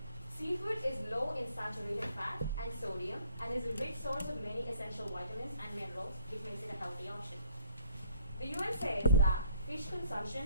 Seafood is low in saturated fat and sodium and is a rich source of many essential vitamins and minerals, which makes it a healthy option. The UN says that fish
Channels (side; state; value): both; inverted; correlation -0.61